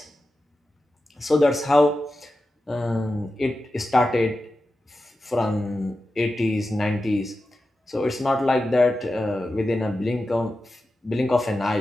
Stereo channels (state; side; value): normal; both; correlation 0.92